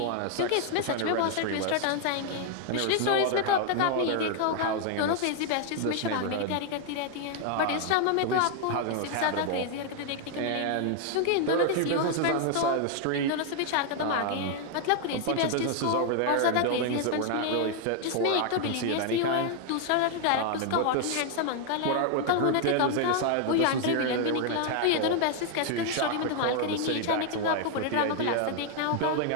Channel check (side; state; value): both; different; correlation 0.00